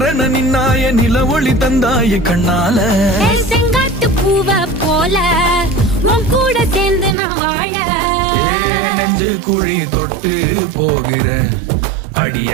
நின்னாய நில ஒளி தந்தாய கண்ணால. செங்காட்டு பூவ போல உன் கூட சேர்ந்து நான் வாழ. நெஞ்சு குழி தொட்டு போகிற அடி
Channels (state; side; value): drops out; left; at 7.2 s